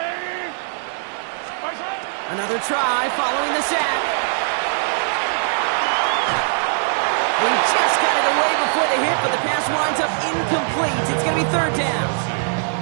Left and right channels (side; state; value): left; silent; digital silence